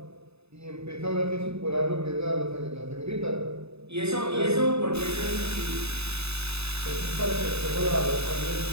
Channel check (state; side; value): late; left; 0.79 ms